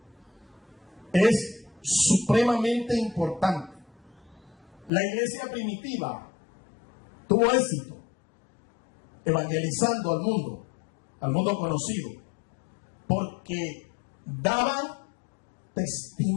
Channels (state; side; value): drops out; right; at 4.9 s